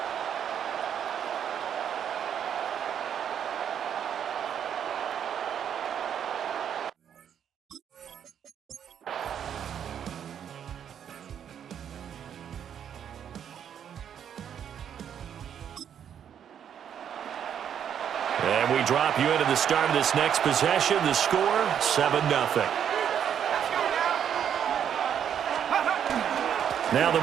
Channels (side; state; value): left; quieter; 8.8 dB